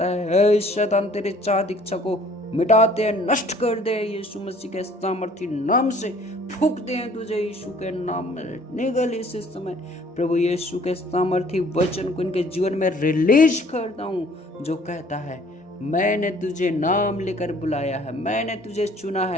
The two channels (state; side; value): normal; both; correlation 0.56